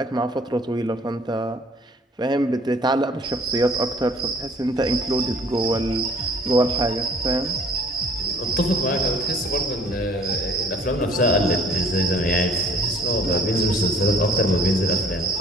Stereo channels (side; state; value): both; normal; correlation 0.54